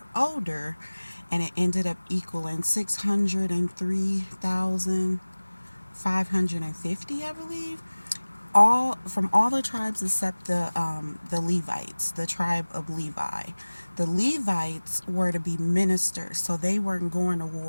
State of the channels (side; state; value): both; inverted; correlation -1.00